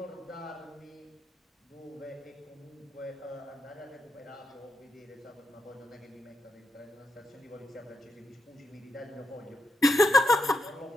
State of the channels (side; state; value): both; normal; correlation 0.83